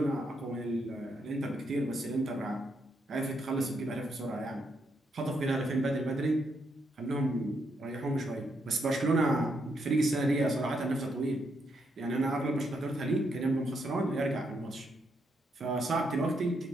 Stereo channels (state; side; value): normal; both; correlation 0.78